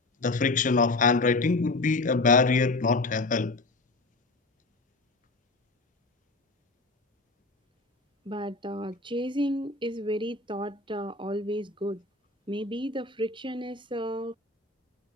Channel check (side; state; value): right; quieter; 3.2 dB